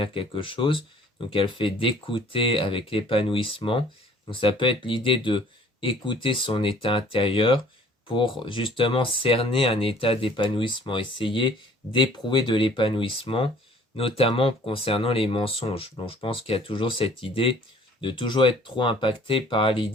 quelque chose. Donc elle fait d'écouter avec l'épanouissement. Donc ça peut être l'idée de écouter son état intérieur pour justement cerner un état d'épanouissement, essayer d'éprouver de l'épanouissement notamment concernant les mensonges. Donc je pense qu'il y a toujours cette idée de toujours être trop impacté par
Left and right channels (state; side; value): normal; both; correlation 0.55